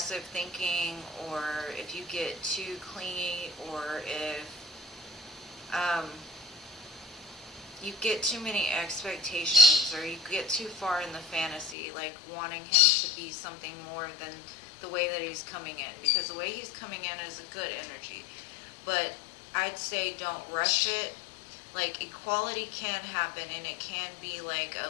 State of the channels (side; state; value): right; drops out; at 11.8 s